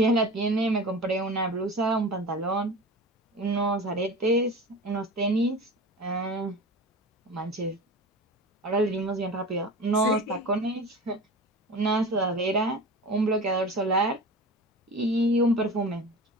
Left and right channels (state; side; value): normal; both; correlation 0.33